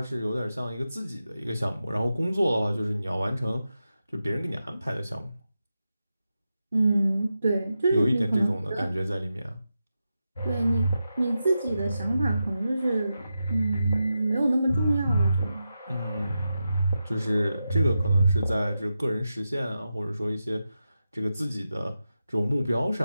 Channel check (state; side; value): inverted; both; correlation -0.89